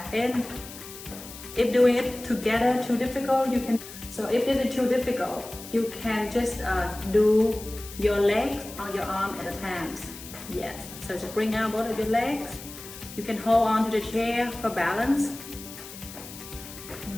in. If doing it together too difficult, you can. So if it is too difficult, you can just do your legs or your arm at a time. Yes, so just bring out both of your legs. You can hold on to the chair for balance.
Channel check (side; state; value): left; noise; hiss, 14 dB below the sound